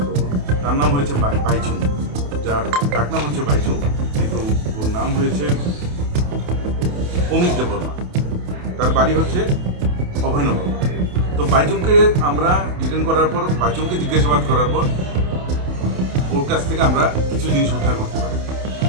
তো তার নাম হয়েছে বাইচুং, যার ডাকনাম হচ্ছে বাইচুং, কিন্তু ওর নাম হয়েছে অমিত দেববর্মা। তার বাড়ি হচ্ছে অভয়নগর। তো বাইচুংকে আমরা ডিটেন করার পর, বাইচুংকে জিজ্ঞাসাবাদ করার পর ওর কাছ থেকে আমরা কিছু জিনিস উদ্ধার করতে পারি।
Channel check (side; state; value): left; late; 28 ms